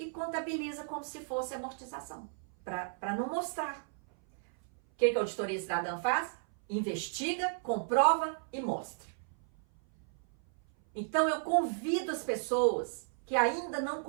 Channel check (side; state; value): left; silent; 55 dB below the other